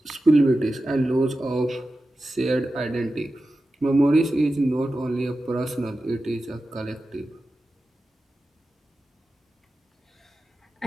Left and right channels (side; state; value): both; normal; correlation 0.93